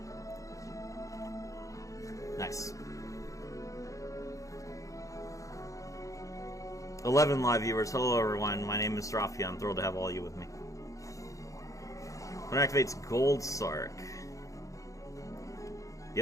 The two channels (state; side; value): late; right; 0.16 ms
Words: Nice. 11 live viewers. Hello everyone, my name is Rafia. I'm thrilled to have all you with me. When it activates Gold Sark. The